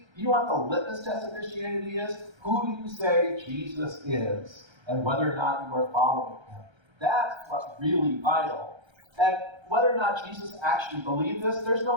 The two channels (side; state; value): left; late; 1.3 ms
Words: You know what the litmus test of Christianity is? Who do you say Jesus is, and whether or not you are following him? That's what's really vital. And whether or not Jesus actually believed this, there's